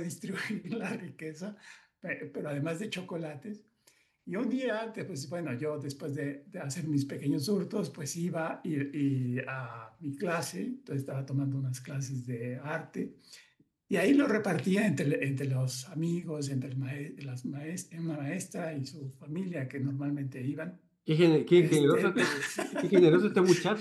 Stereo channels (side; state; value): both; identical; correlation 1.00